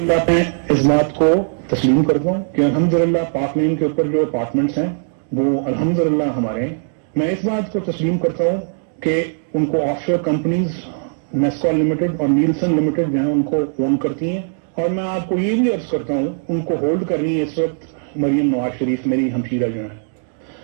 पे इस बात को तस्लीम करता हूँ कि अल्हम्दुलिल्लाह पाक मीम के ऊपर जो अपार्टमेंट्स हैं वो अल्हम्दुलिल्लाह हमारे। मैं इस बात को तस्लीम करता हूँ कि उनको ऑफशोर कंपनीज नेस्कॉल लिमिटेड और नीलसन लिमिटेड जो है उनको ओन करती हैं, और मैं आपको ये भी अर्ज करता हूँ उनको होल्ड करनी है इस वक्त मरियम नवाज शरीफ मेरी हमशीरा जो है।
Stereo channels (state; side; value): silent; left; digital silence